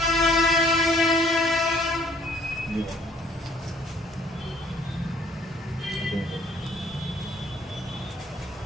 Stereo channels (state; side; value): normal; both; correlation 0.60